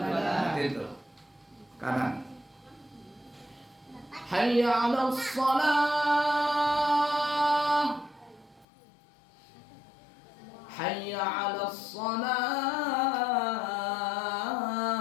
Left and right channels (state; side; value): drops out; right; at 8.7 s